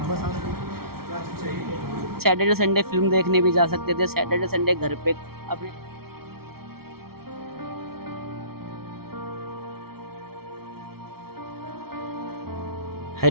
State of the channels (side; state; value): left; late; 0.94 ms